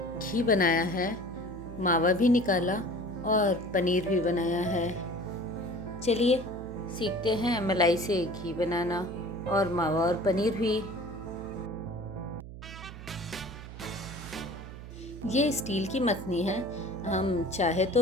बनाया है, मावा भी निकाला और पनीर भी बनाया है। चलिए सीखते हैं मलाई से घी बनाना और मावा और पनीर भी। ये स्टील की मथनी है, हम चाहे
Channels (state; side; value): noise; right; hum, 12 dB below the sound